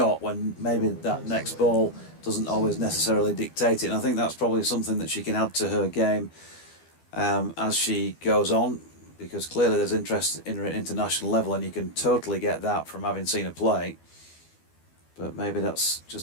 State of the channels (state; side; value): late; right; 12 ms